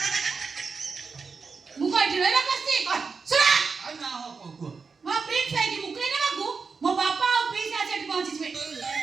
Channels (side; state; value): left; quieter; 5.0 dB